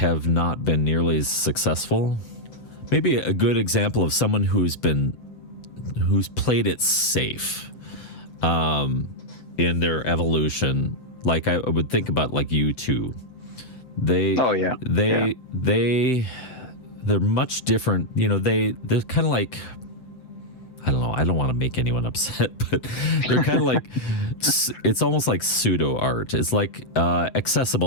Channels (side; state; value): right; late; 7.9 ms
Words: not been nearly as successful. Maybe a good example of someone who's played it safe in their evolution. Like I would think about like U2. They're much different. They're kind of like, I don't know. I don't want to make anyone upset, but they're kind of like, it's almost like pseudo art. It's like